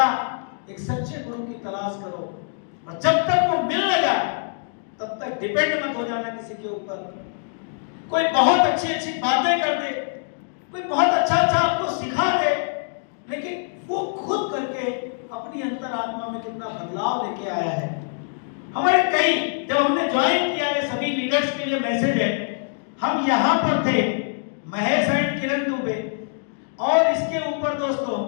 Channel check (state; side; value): silent; right; digital silence